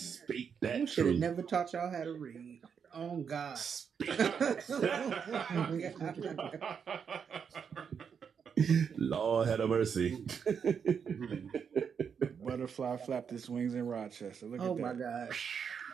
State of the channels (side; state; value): left; quieter; 6.9 dB